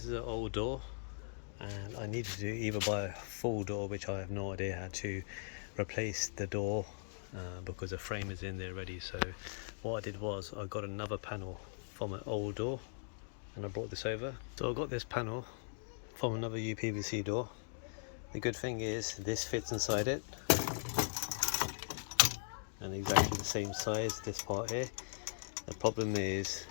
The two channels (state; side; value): silent; right; digital silence